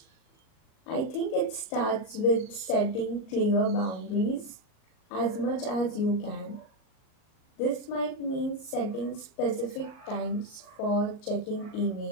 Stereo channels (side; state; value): right; late; 38 ms